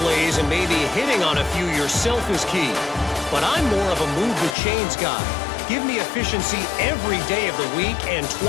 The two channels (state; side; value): drops out; right; at 4.5 s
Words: plays and maybe hitting on a few yourself is key. But I'm more of a move the chains guy. Give me efficiency every day of the week and